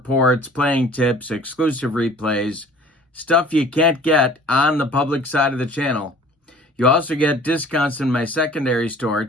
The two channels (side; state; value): both; normal; correlation 0.49